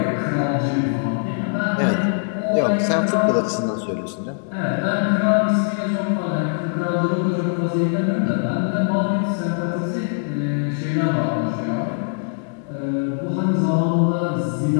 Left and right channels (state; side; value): silent; right; digital silence